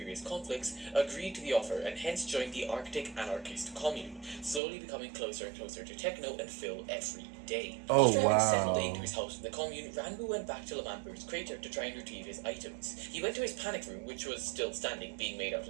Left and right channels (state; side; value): drops out; left; at 4.6 s